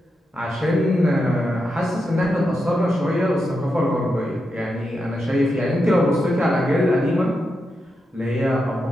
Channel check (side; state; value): both; normal; correlation 0.86